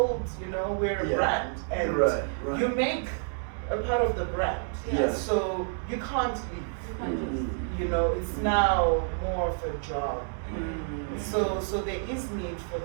you know, we're a brand. And you make a part of the brand. So you can't leave. You know, it's now more of a job. So there is need for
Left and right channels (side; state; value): left; silent; 59 dB below the other